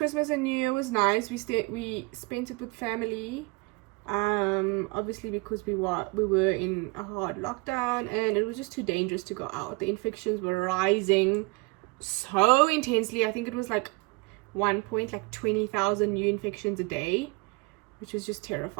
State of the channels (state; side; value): quieter; left; 27.1 dB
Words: and New Year was nice. We spent it with family. Obviously because we were in a hard lockdown and it was just too dangerous to go out. The infections were rising so intensely. I think it was like 20,000 new infections a day, which was just